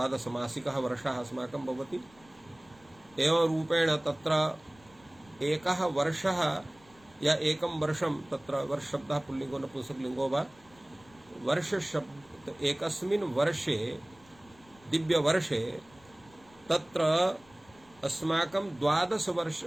मासिकः वर्षः अस्माकं भवति। एवं रूपेण तत्र एकः वर्षः या एकं वर्षं तत्र वर्ष शब्दः पुल्लिङ्गो नपुंसकलिङ्गो वा वर्ष शब्द एकस्मिन् वर्षे दिव्यवर्षे तत्र अस्माकं 12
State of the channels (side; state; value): left; noise; rumble, 27 dB below the sound